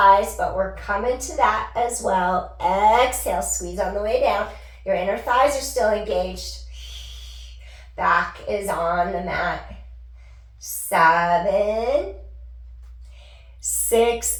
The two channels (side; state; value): both; identical; correlation 1.00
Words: but we're coming to that as well. Exhale, squeeze on the way down. Your inner thighs are still engaged. Back is on the mat. 7, 6,